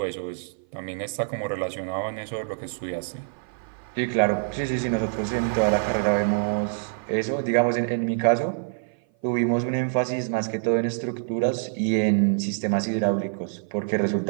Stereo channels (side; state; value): left; silent; 56 dB below the other